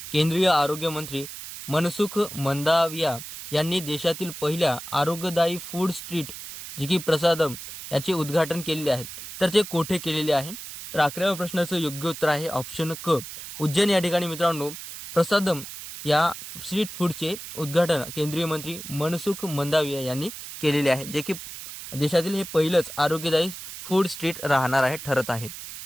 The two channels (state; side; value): noise; right; hiss, 11 dB below the sound